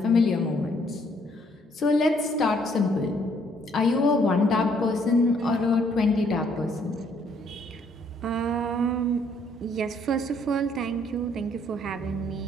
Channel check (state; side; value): normal; both; correlation 0.66